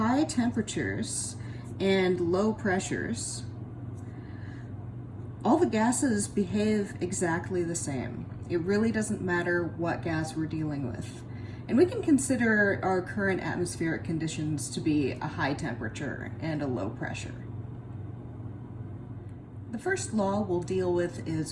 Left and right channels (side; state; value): both; identical; correlation 1.00